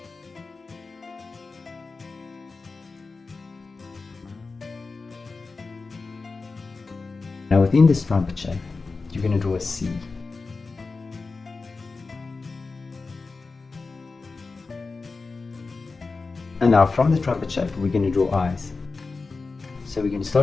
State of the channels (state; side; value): quieter; right; 4.1 dB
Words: Now within this trumpet shape, you're going to draw a C. And now from the trumpet shape, we're going to draw eyes. So we're going to